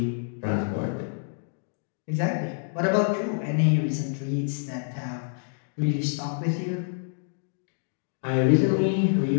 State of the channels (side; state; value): right; silent; digital silence